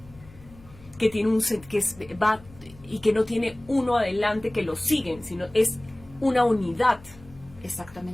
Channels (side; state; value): left; noise; hum, 22 dB below the sound